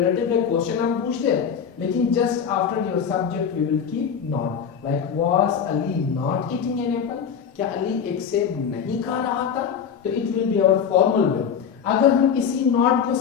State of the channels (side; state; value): right; quieter; 7.4 dB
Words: है, क्वेश्चन हम पूछते हैं, लेकिन just after your subject we will keep not, like was Ali not eating an apple, क्या अली एक सेब नहीं खा रहा था, तो it will be our formal way. अगर हम इसी नॉट को